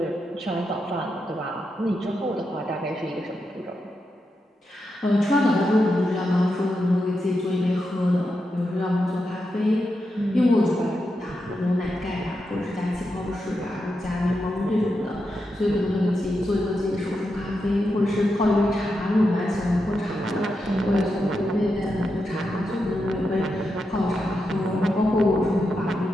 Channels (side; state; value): both; normal; correlation 0.86